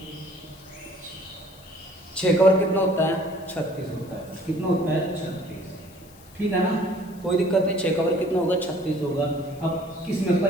6 का वर्ग कितना होता है 36 होता है, कितना होता है 36, ठीक है ना, कोई दिक्कत नहीं। 6 का वर्ग कितना होगा 36 होगा। अब किस में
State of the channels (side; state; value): left; noise; hiss, 24 dB below the sound